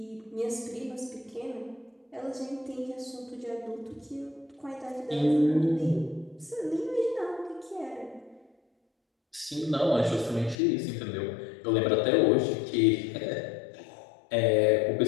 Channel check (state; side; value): drops out; right; at 10.6 s